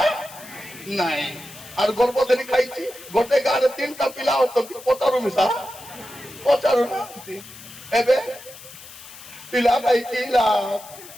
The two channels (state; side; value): noise; left; hiss, 17 dB below the sound